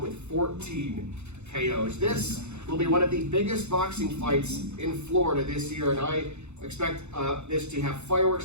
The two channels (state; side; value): late; left; 0.82 ms